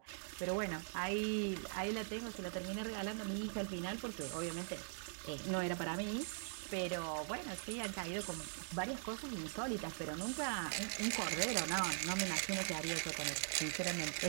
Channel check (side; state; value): left; silent; digital silence